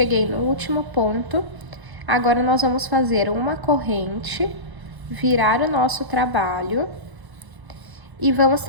no último ponto. Agora, nós vamos fazer uma corrente, virar o nosso trabalho e vamos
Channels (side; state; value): left; late; 1.1 ms